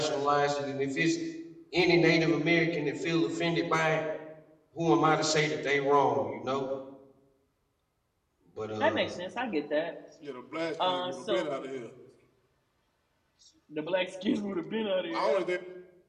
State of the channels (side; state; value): both; identical; correlation 1.00